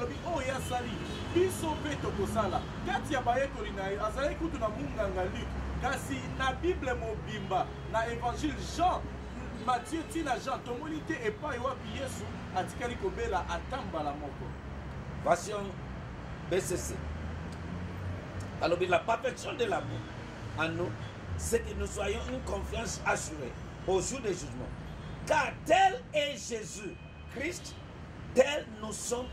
oyo asali biso mpe tokosala kati ya bayekoli na ye azalaki kutu na munganga Luc kasi na bible mobimba na évangile Jean Matthieu tina Jean tomoni te epai wapi Yesu atikali kobela atambala moko. Version BCC. alobi la perfection de l'amour en nous, c'est que nous soyons une confiance assurée au jour du jugement. Car tel est Jésus Christ, tel nous sommes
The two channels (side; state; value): both; identical; correlation 1.00